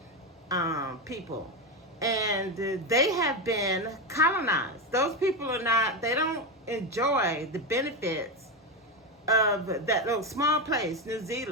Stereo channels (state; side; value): normal; both; correlation 0.12